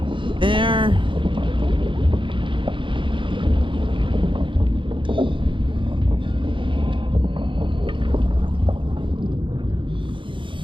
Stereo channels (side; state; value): left; late; 0.24 ms